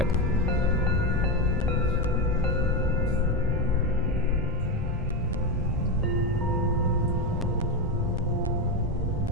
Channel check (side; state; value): both; normal; correlation 0.13